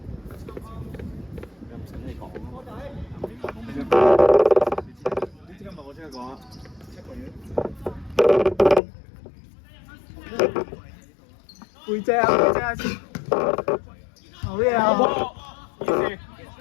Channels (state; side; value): drops out; right; at 8.8 s